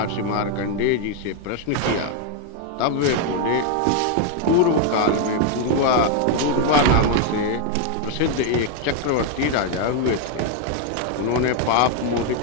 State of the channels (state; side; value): different; both; correlation 0.01